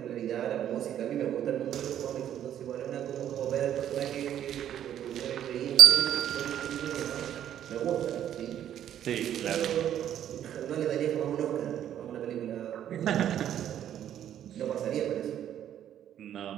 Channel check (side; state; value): left; quieter; 10.6 dB